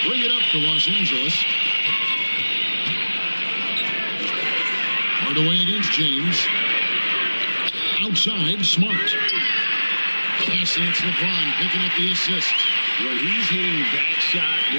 bring it up to Los Angeles. Hardaway against James. Outside, Smart. Yes, and it's LeBron picking up the assist. When he's hitting that shot,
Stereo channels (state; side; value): inverted; both; correlation -1.00